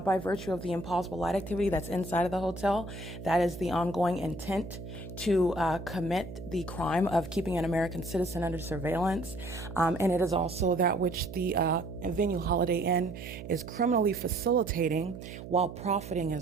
virtue of the impossible light activity that's inside of the hotel. That is the ongoing intent to commit the crime of keeping an American citizen under surveillance. And it is also that which the venue Holiday Inn is criminally facilitating while profiting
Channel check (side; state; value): right; noise; hum, 11 dB below the sound